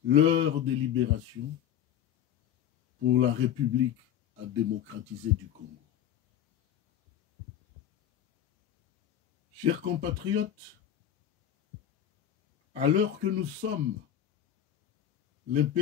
l'heure de libération pour la République à démocratiser du Congo ». Chers compatriotes, à l'heure que nous sommes,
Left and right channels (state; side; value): quieter; right; 10.3 dB